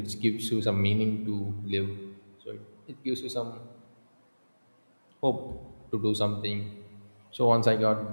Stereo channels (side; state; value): both; inverted; correlation -1.00